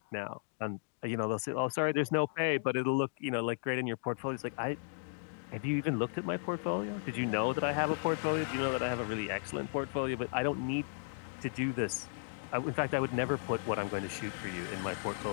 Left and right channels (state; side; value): silent; right; digital silence